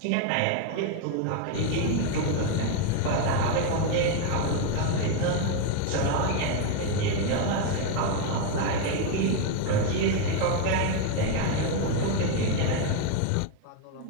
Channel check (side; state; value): both; different; correlation 0.01